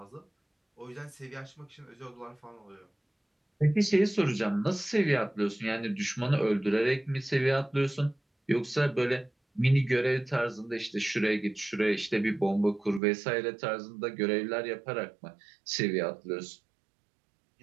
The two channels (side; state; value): left; drops out; at 13.0 s